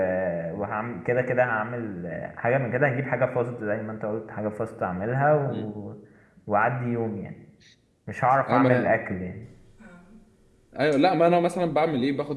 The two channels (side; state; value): both; identical; correlation 1.00